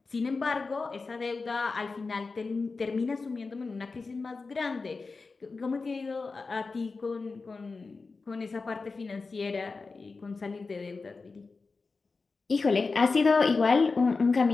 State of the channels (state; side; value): quieter; right; 4.1 dB